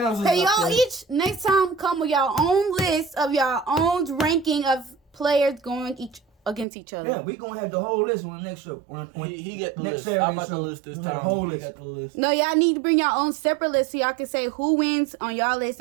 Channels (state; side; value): drops out; left; at 6.7 s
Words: is Hey, up y'all there. each next time come with y'all own list of y'all own ranking of players going against each other. Yeah, we gonna have the whole list on the next show. He get the next list. Saturday I'm about show, the list this we have time. the whole He list. got the list. No, y'all need to bring your own separate list so y'all can say who wins on y'all list